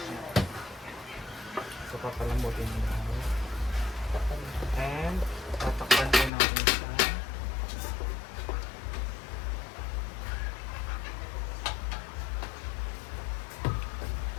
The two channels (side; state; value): right; drops out; at 6.3 s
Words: So papalambutin mo. And tatakpan po natin siya.